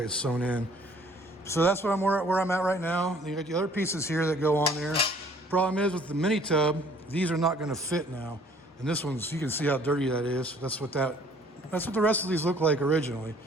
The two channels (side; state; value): both; normal; correlation 0.57